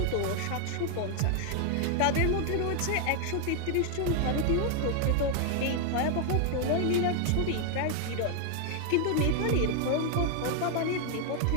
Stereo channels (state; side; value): different; both; correlation 0.00